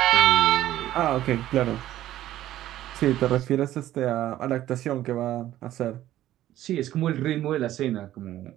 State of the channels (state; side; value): quieter; left; 13.5 dB